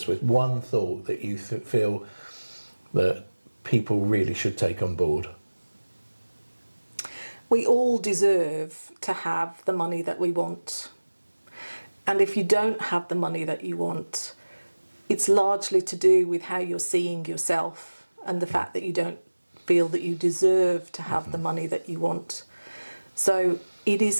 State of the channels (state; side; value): inverted; both; correlation -1.00